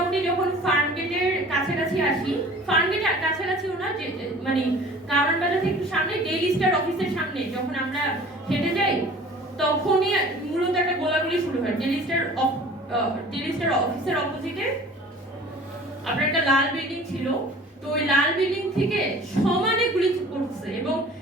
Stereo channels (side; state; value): both; normal; correlation 0.46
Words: যখন ফার্ম গেটের কাছাকাছি আসি, ফার্ম গেটের কাছাকাছিও না, যে মানে কারওয়ান বাজার থেকে একটু সামনে ডেইলি স্টার অফিসের সামনে যখন আমরা হেঁটে যাই, তখনই মূলত একটা গোলাগুলি শুরু হয়। ডেইলি স্টার অফিসের অপোজিটে আপনার একটা লাল বিল্ডিং ছিল, তো ওই লাল বিল্ডিং থেকে সমানে গুলি করছে এবং